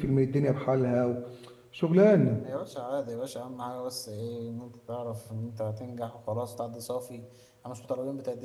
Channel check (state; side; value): identical; both; correlation 1.00